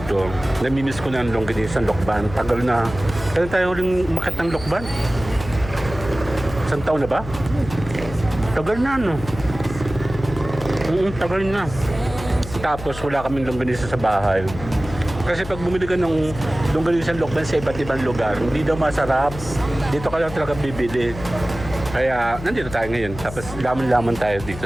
namimiss ko na ang longganisang lokban. Tagal na. Kailan tayo huling umakyat ng lokban? Isang taon na ba? Tagal na, no? Tagal na. Tapos wala kaming longganisa sa bahay. Kasi pag bumili ka ng longganisang lokban sa iba't ibang lugar, hindi daw masarap. Dito ka lang talaga bibili. Kaya nandito tayo ngayon. Tapos laman-laman tayo dito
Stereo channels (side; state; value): left; noise; hum, 11 dB below the sound